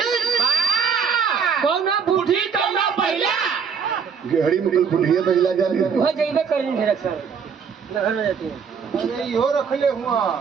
कौन बूढ़ी कौन पहला गेहड़ी में बुढ़िया पहला जाने वो जइबे करी ढेर सर घर में जाती है अरे यो रख ले हुआ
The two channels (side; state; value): left; quieter; 6.5 dB